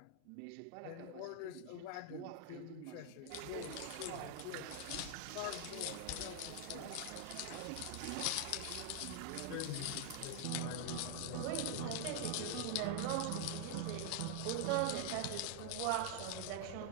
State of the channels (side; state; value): both; different; correlation 0.00